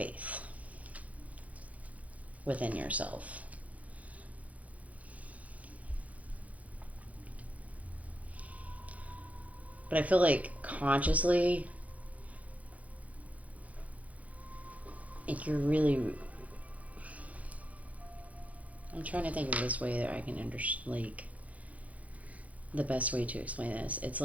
within yourself. But I feel like consciously, if you're really, I'm trying to think of this way that I can understand, like, the best way to explain this. It's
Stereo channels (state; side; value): late; left; 0.069 ms